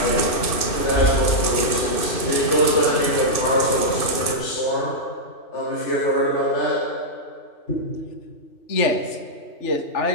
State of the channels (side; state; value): right; late; 2.6 ms